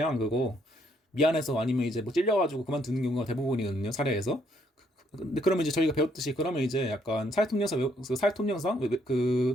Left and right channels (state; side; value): normal; both; correlation 0.70